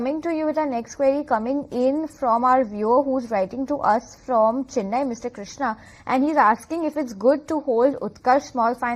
to you with our next query coming in from our viewer who's writing to us from Chennai, Mr. Krishna, and he's asking if it's good to hold Utkarsh Small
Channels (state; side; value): identical; both; correlation 1.00